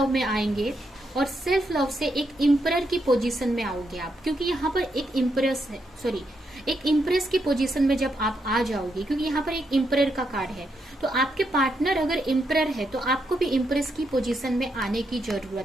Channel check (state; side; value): normal; both; correlation 0.80